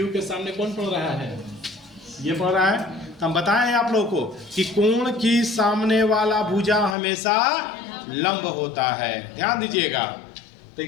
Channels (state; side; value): drops out; right; at 7.0 s